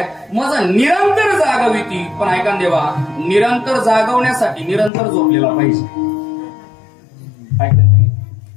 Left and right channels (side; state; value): right; drops out; at 4.9 s